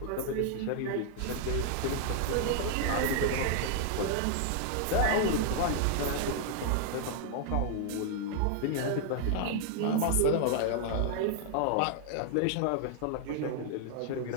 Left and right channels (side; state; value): both; different; correlation 0.00